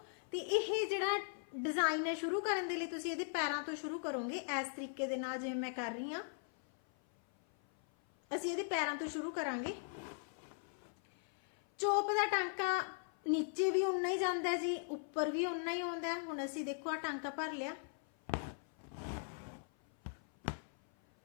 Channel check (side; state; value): right; silent; 52 dB below the other